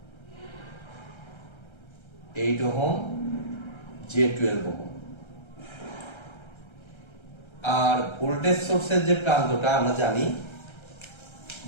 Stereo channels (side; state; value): right; late; 1.3 ms